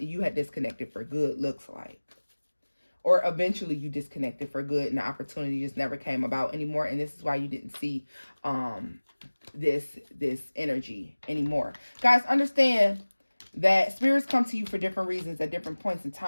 you had disconnected for good, looks like. Or eventually you disconnected for good and the opportunity just never came about anymore. And this is why you didn't see this energy anymore. Guys, understand that spirits come to you for different reasons at different points in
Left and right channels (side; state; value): both; inverted; correlation -1.00